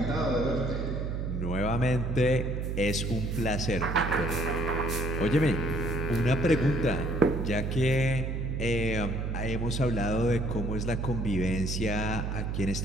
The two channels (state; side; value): noise; right; hum, 2 dB below the sound